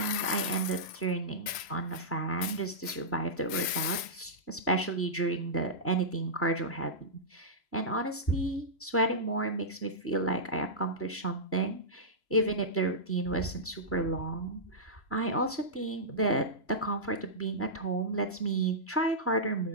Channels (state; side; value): late; right; 3.0 ms